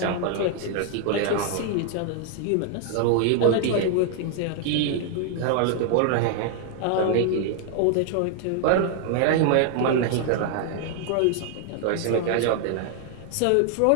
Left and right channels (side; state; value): both; different; correlation 0.00